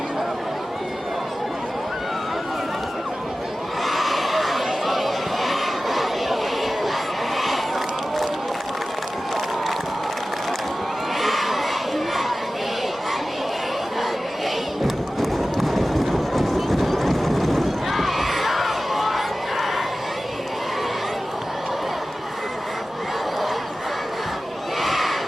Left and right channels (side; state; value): both; normal; correlation 0.96